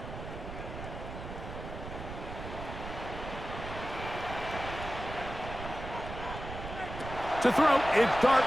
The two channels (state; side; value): noise; right; rumble, 9 dB below the sound